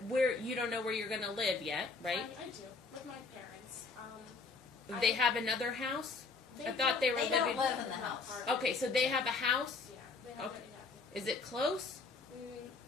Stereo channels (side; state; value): right; quieter; 4.2 dB